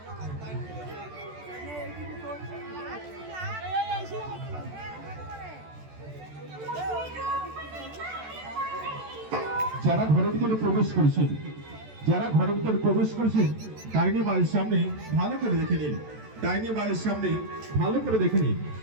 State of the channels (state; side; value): late; left; 14 ms